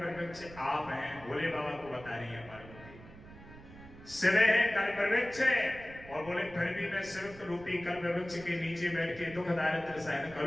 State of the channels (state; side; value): noise; right; rumble, 18 dB below the sound